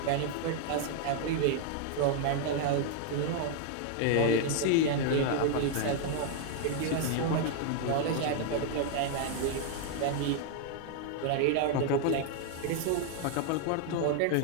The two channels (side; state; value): both; different; correlation 0.00